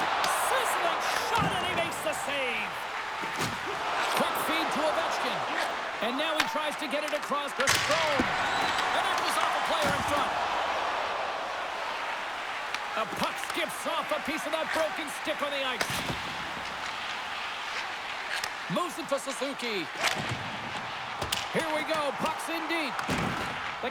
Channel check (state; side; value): identical; both; correlation 1.00